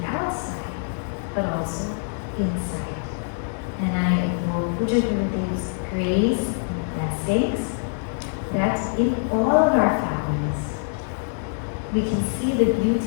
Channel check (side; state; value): right; silent; 62 dB below the other